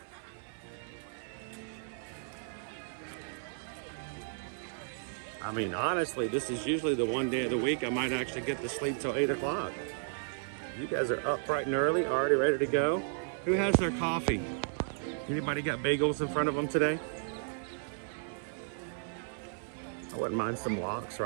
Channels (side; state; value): left; silent; 55 dB below the other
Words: I mean, honestly, this is usually the one day of the week I might actually get to sleep till 8 o'clock. You guys are up bright and early, already ready to go. Who has their coffee? Anybody got bagels in front of them today? I wouldn't mind some lox